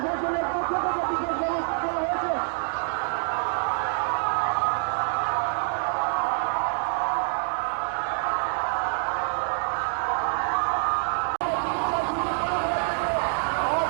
পক্ষ থেকে বিশেষ ব্যবস্থা করা হয়েছে।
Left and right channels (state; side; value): silent; left; 61 dB below the other